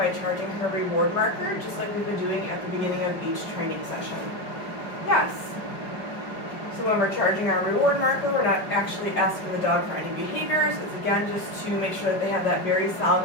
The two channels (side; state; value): right; late; 5.2 ms